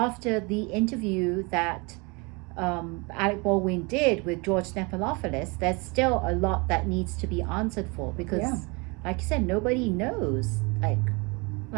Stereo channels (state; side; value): quieter; left; 28.8 dB